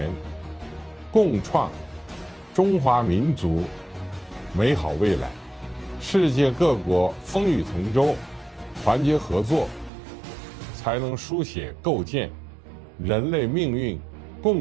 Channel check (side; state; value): left; drops out; at 9.9 s